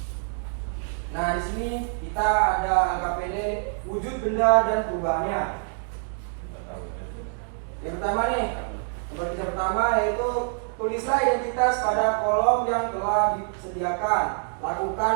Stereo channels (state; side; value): silent; left; 57 dB below the other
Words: Nah, di sini kita ada LKPD wujud benda dan perubahannya. Yang pertama nih, lembar kerja pertama yaitu tulislah identitas pada kolom yang telah disediakan. Lakukan